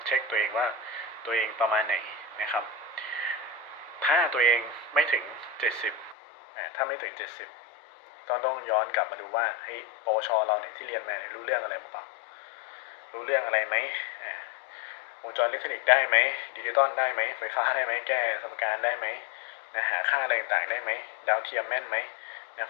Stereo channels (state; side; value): drops out; right; at 6.2 s